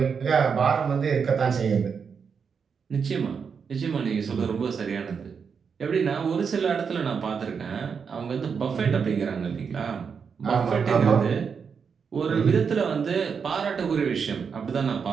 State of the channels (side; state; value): left; quieter; 6.2 dB